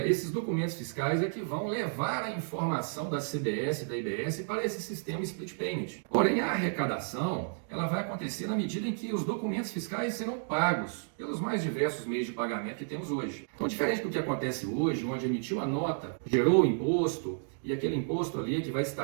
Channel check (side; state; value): left; silent; digital silence